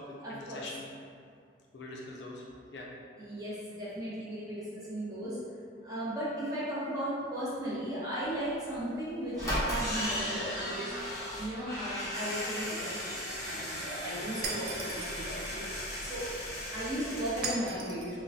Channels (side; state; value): both; normal; correlation 0.29